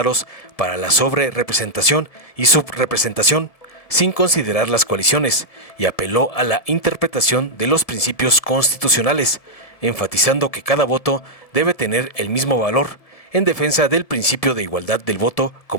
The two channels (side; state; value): right; late; 1.7 ms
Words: para la sobrerepresentación y subrepresentación, sin considerar las coaliciones, y apeló a la interpretación de los principios constitucionales, enfatizando que cada voto debe tener el mismo valor, en defensa del principio de igualdad del voto